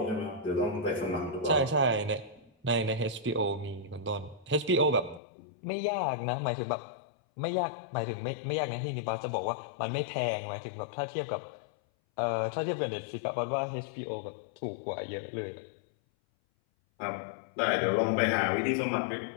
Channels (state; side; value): drops out; right; at 5.2 s